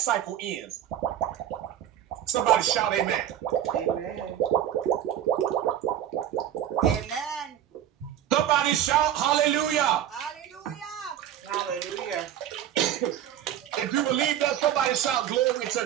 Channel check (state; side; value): quieter; left; 11.0 dB